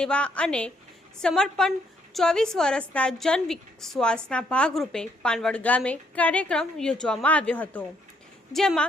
અને સમર્પણ 24 વર્ષના જન વિશ્વાસના ભાગરૂપે પાનવડ ગામે કાર્યક્રમ યોજવામાં આવ્યો હતો,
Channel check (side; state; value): both; normal; correlation 0.71